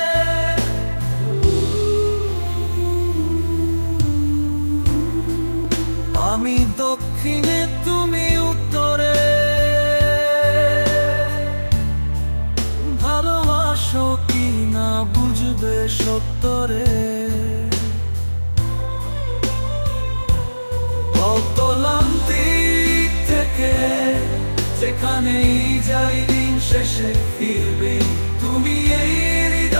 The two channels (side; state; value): both; inverted; correlation -1.00